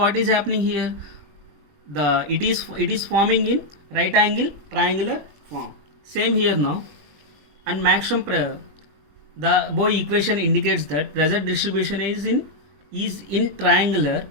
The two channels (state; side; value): late; left; 21 ms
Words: is happening here? It is forming in right angle triangular form. Same here now. And maximum the Boy equation indicates that pressure distribution is in triangular